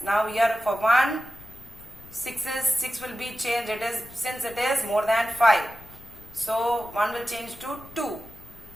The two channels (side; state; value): left; noise; rumble, 20 dB below the sound